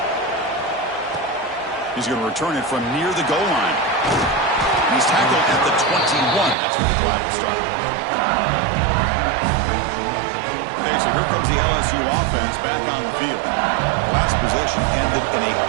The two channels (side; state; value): left; drops out; at 6.6 s